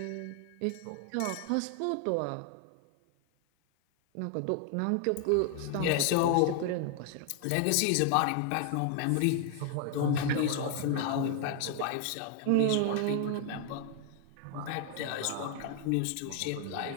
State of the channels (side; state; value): both; different; correlation 0.00